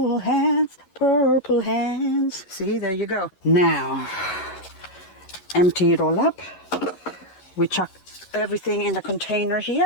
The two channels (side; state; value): right; late; 11 ms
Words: hands, purple hands. See, there you go. Now, empty it all up. We chuck everything in a container